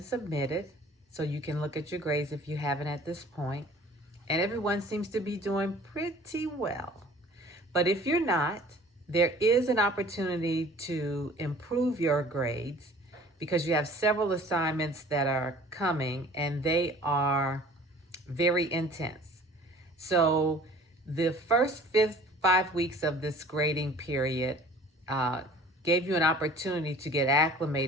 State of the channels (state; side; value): normal; both; correlation 0.49